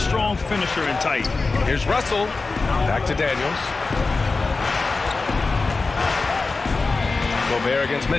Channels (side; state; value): right; quieter; 3.9 dB